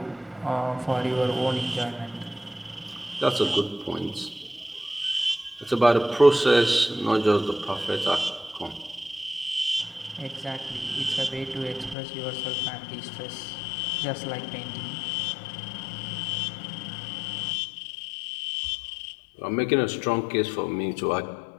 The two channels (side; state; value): right; drops out; at 12.0 s